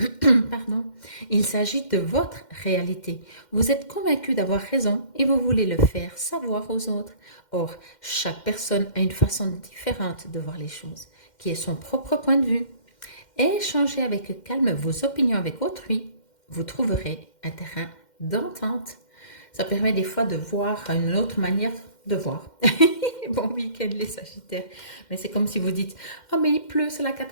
Pardon. Il s'agit de votre réalité. Vous êtes convaincu d'avoir raison et vous voulez le faire savoir aux autres. Or, chaque personne a une façon différente de voir les choses, qui est son propre point de vue. Échangez avec calme vos opinions avec autrui. Vous trouverez un terrain d'entente. Ça permet des fois de voir une autre manière de voir. Bon week-end les Sagittaires. Mais c'est comme si vous dites « Oh mais il pleut, c'est la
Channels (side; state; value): right; late; 2.1 ms